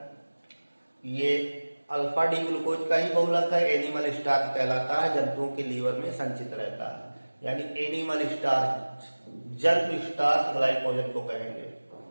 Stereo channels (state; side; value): inverted; both; correlation -1.00